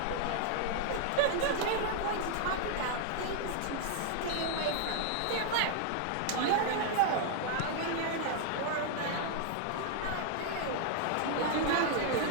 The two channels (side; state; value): both; different; correlation -0.01